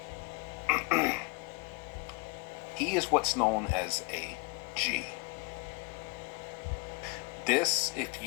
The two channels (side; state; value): right; quieter; 29.2 dB